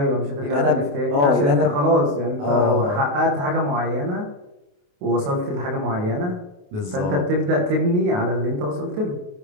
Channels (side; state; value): left; late; 28 ms